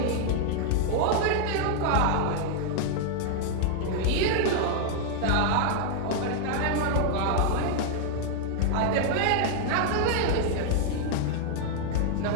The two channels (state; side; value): different; both; correlation -0.01